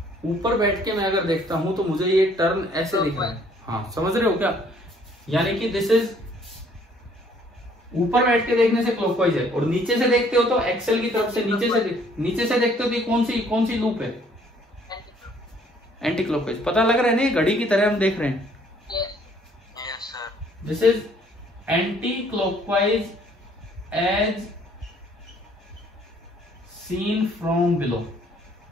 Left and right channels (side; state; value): both; normal; correlation 0.61